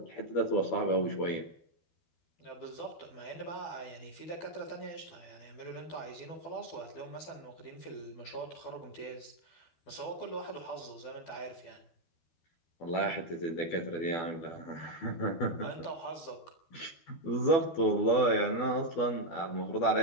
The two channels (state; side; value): late; right; 12 ms